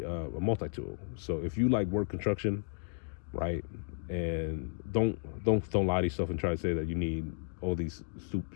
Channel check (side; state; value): right; silent; digital silence